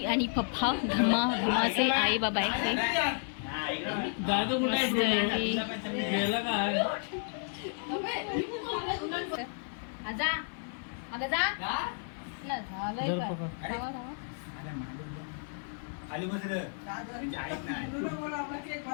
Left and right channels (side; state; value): right; silent; 56 dB below the other